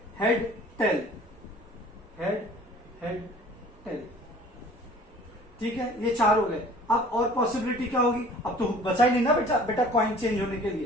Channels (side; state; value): both; normal; correlation 0.49